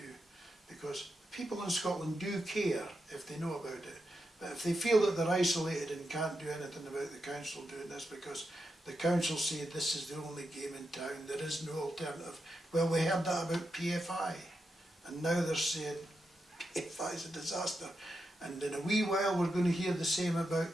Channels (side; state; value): both; normal; correlation 0.86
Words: because people in Scotland do care if they know about it, but if they feel that they're isolated and can't do anything about the council doing this because the council say this is the only game in town, there is no alternative. Well, we heard that about PFI, and now they're saying PFI is a disaster, and in a wee while we're going to hear the same